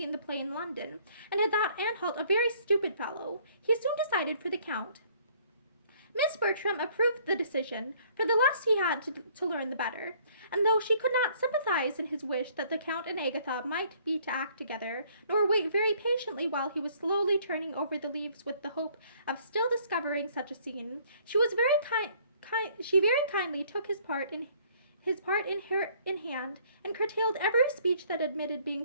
the play in London, and had thought Anhalt a very stupid fellow, he soon decided for the Count. Miss Bertram approved the decision, for the less he had to learn the better, and though she could not sympathize in his wish that the Count and Agatha might be to act together, nor wait very patiently while he was slowly turning over the leaves with the hope of still discovering such a scene, she very kindly took his part in hand, and curtailed every speech that admitted being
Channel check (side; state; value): both; inverted; correlation -0.60